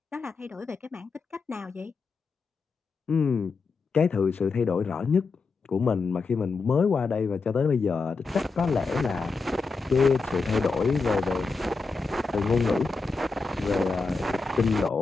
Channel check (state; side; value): quieter; right; 4.3 dB